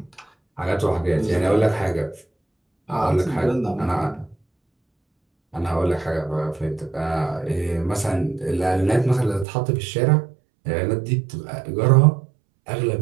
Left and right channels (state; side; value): drops out; left; at 9.5 s